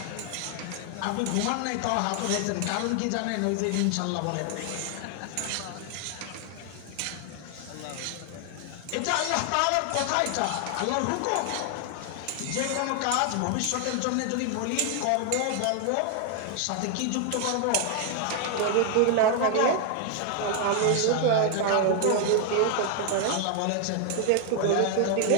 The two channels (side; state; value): both; different; correlation 0.00